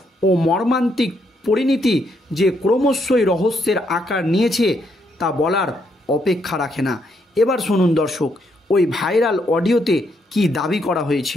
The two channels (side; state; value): both; normal; correlation 0.75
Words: ও মর্মান্তিক পরিণতি যে ক্রমশই রহস্যের আকার নিয়েছে তা বলার অপেক্ষা রাখে না। এবার শুনুন দর্শক, ওই ভাইরাল অডিওতে কি দাবি করা